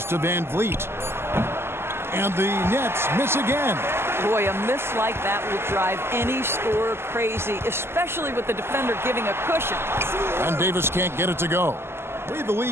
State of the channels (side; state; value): left; late; 0.12 ms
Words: to Van Vliet. And the Nets miss again. Boy, a miss like that will drive any scorer crazy, especially with the defender giving a cushion. And Davis can't get it to go. The way the